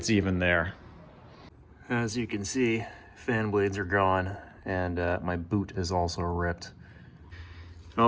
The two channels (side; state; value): both; identical; correlation 1.00